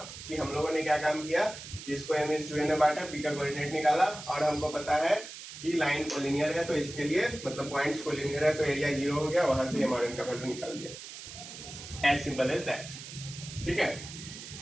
कि हम लोगों ने क्या काम किया कि इसको m/n में बांटा, p का कोऑर्डिनेट निकाला और हमको पता है कि लाइन कोलिनियर है, तो इसके लिए मतलब पॉइंट्स कोलिनियर है तो एरिया 0 हो गया, वहां से m और n का वैल्यू निकाल दिया, एज सिंपल एज दैट, ठीक है।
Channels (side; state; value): right; noise; hiss, 12 dB below the sound